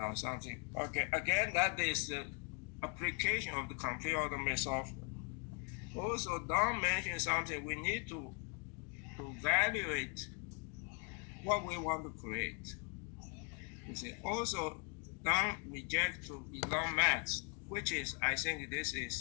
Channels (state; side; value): quieter; right; 35.9 dB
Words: something. Okay, again, that is the application of the computer automated software. Also, Don mentioned something. We need to evaluate what we want to create. You see, also Don reject to Elon Musk, which is, I think this is